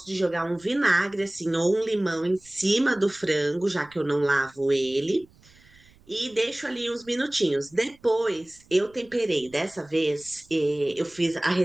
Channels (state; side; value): noise; right; rumble, 28 dB below the sound